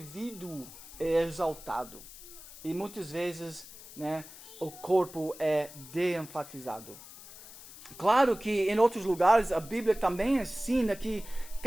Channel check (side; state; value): left; noise; hiss, 17 dB below the sound